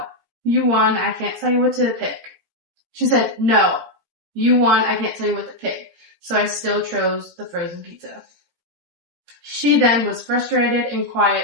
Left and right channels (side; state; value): left; late; 17 ms